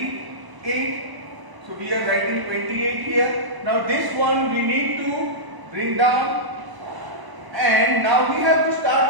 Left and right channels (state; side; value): late; left; 1.0 ms